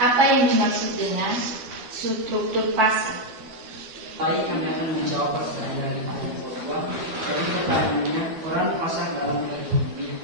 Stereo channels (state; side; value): late; left; 12 ms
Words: Apa yang dimaksud dengan struktur pasar? Baik, kami akan menjawab pertanyaan dari kelompok 2. Jadi pertanyaannya, peran pasar dalam perekonomian,